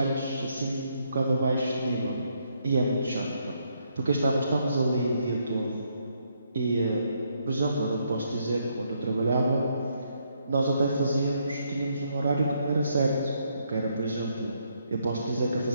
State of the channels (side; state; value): both; inverted; correlation -0.74